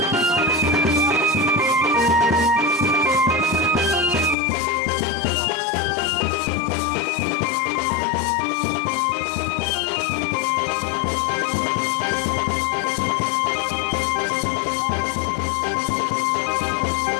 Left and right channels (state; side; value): drops out; right; at 4.4 s